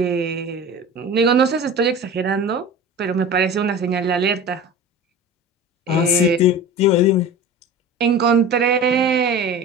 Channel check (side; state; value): both; normal; correlation 0.35